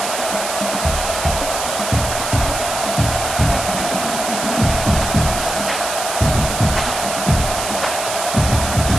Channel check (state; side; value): noise; right; hiss, 5 dB below the sound